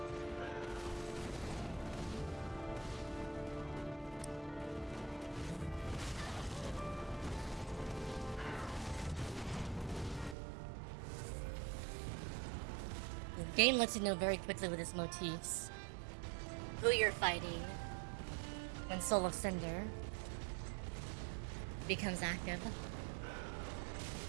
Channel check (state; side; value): drops out; left; at 10.4 s